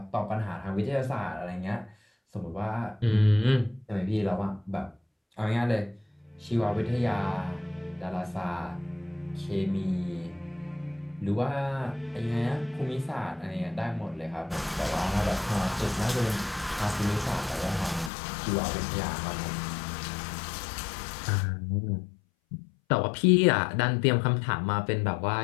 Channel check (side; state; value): right; drops out; at 18.1 s